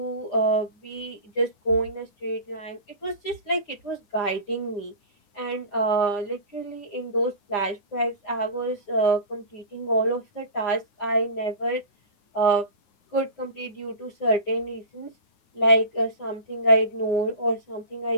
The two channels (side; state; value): right; late; 9.7 ms